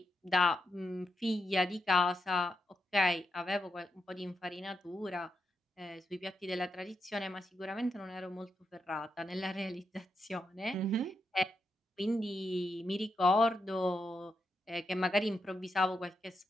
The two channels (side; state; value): both; normal; correlation 0.84